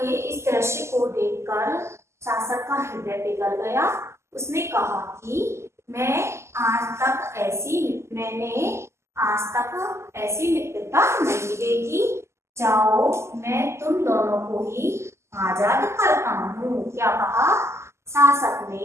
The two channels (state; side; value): late; left; 0.13 ms